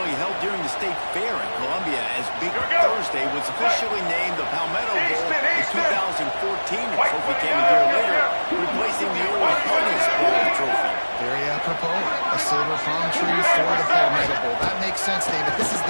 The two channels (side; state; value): both; inverted; correlation -1.00